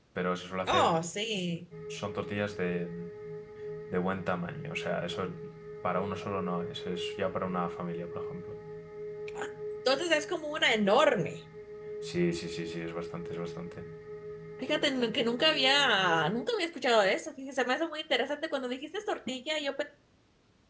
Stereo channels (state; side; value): identical; both; correlation 1.00